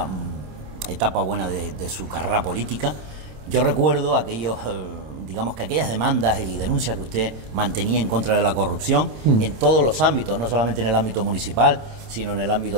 etapa buena de su carrera política. Yo recuerdo aquellas demandas y denuncias que usted mantenía en contra de la corrupción en todos los ámbitos, no solamente en el ámbito municipal, sino en el ámbito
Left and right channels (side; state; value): left; late; 27 ms